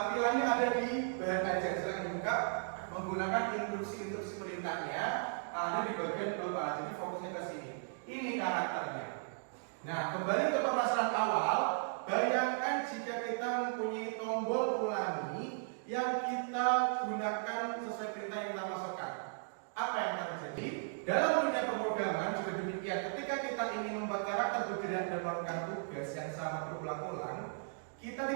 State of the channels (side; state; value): left; silent; digital silence